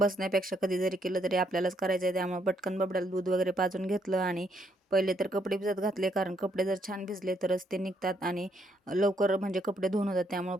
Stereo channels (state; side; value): normal; both; correlation 0.72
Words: कधी जरी केलं तरी आपल्यालाच करायचं आहे. त्यामुळे पटकन बबड्याला दूध वगैरे पाजून घेतलं आणि पहिले तर कपडे भिजत घातले, कारण कपडे जर छान भिजले तरच ते निघतात आणि लवकर म्हणजे कपडे धुवून होतात. त्यामुळे